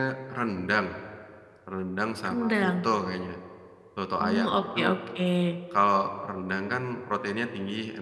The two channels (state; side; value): identical; both; correlation 1.00